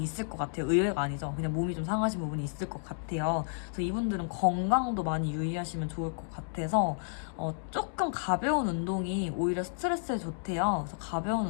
있을 것 같아요. 의외가 아니죠. 그냥 몸이 좀 상하신 부분이 있을 것 같아요. 그래서 이분들은 건강도 많이 유의하시면 좋을 것 같아서 조금 가벼운 운동이 오히려 스트레스에 좋대요. 그래서 가벼운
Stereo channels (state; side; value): silent; right; 57 dB below the other